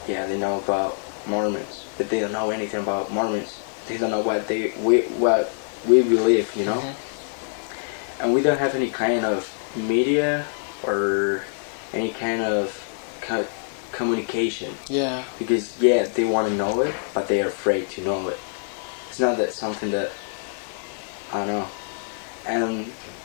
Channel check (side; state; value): right; silent; 58 dB below the other